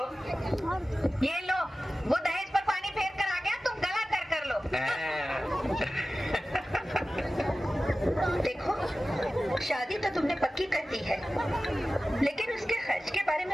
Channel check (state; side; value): normal; both; correlation 0.95